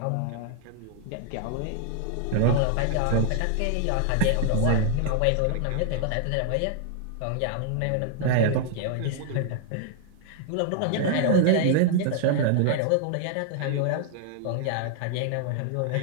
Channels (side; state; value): both; different; correlation 0.00